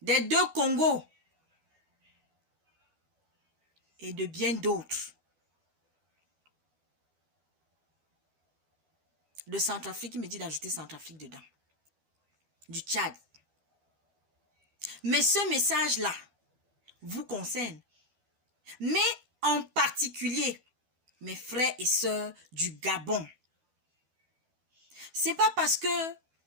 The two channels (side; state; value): left; late; 12 ms